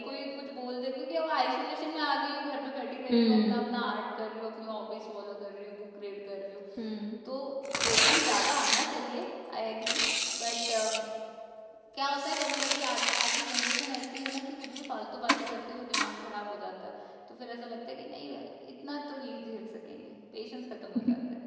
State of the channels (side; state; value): both; identical; correlation 1.00